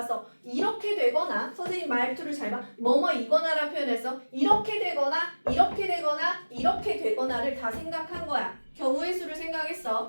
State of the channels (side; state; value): both; inverted; correlation -1.00